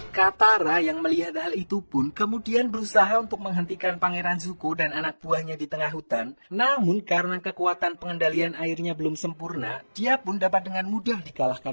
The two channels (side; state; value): both; inverted; correlation -1.00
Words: Katara yang melihat hal itu pun kemudian berusaha untuk menghentikan Pangeran Zuko dan anak buahnya di tengah hutan. Namun karena kekuatan pengendalian airnya belum sempurna, dia pun dapat dengan mudah